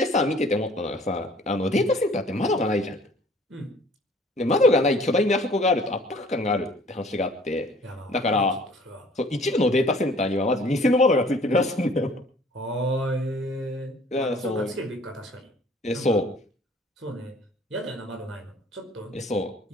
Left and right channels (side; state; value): both; normal; correlation 0.54